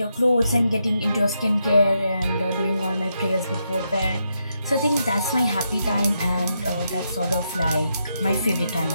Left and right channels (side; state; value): both; inverted; correlation -0.82